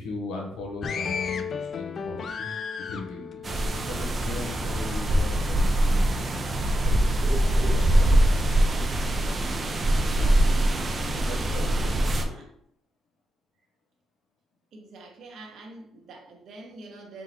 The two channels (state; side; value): normal; both; correlation 0.89